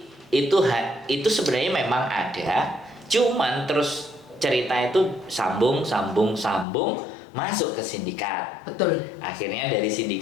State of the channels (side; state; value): right; drops out; at 6.7 s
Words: itu sebenarnya memang ada, cuman terus cerita itu sambung masuk ke sindikat. Betul. Akhirnya dari